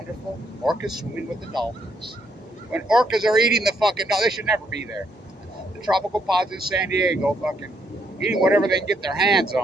Orcas swimming with the dolphins. When orcas are eating the fucking dolphins, they should never be there. The tropical pods in San Diego fucking eating whatever they can get their hands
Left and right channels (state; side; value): normal; both; correlation 0.73